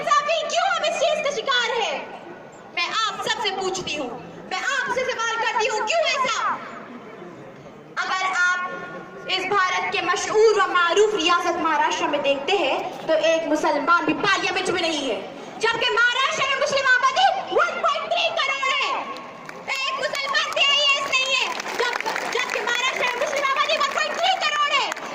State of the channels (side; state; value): both; identical; correlation 1.00